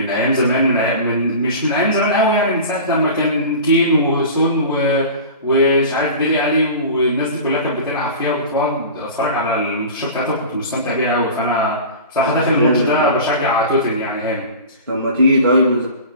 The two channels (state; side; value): inverted; both; correlation -0.35